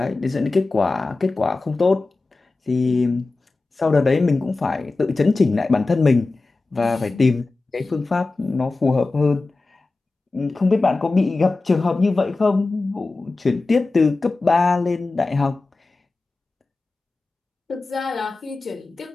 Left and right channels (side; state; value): right; quieter; 3.5 dB